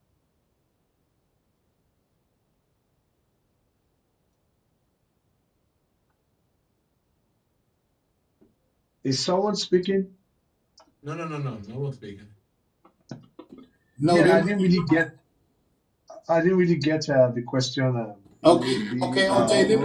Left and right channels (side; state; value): both; identical; correlation 1.00